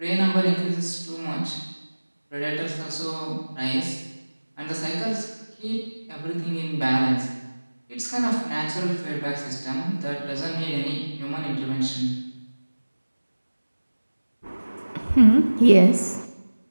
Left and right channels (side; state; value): both; inverted; correlation -1.00